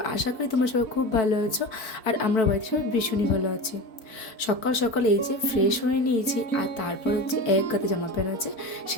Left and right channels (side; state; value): right; late; 4.6 ms